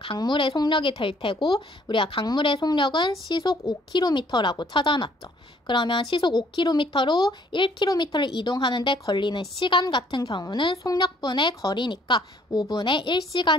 강물의 속력이 될 테고 우리가 강물의 속력은 시속 5km라고 찾아놨죠. 그러면 시속 5km로 1km를 이동하는데 걸리는 시간 같은 경우는 속력분의 거리니까 5분의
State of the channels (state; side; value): normal; both; correlation 0.62